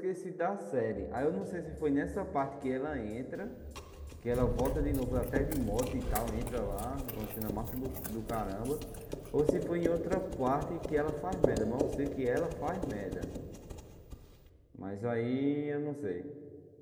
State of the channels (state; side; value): identical; both; correlation 1.00